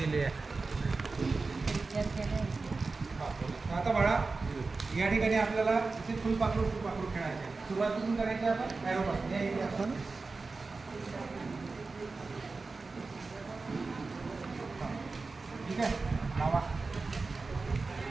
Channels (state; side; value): quieter; left; 3.9 dB